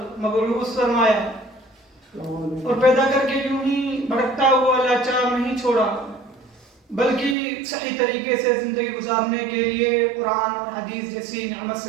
مبعوث فرمایا اور پیدا کر کے یوں ہی بھٹکتا ہوا لاچار نہیں چھوڑا، بلکہ صحیح طریقے سے زندگی گزارنے کے لیے قرآن اور حدیث جیسی نعمت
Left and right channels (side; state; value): left; drops out; at 7.4 s